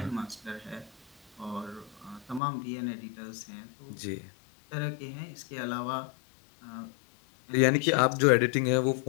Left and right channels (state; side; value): drops out; right; at 2.4 s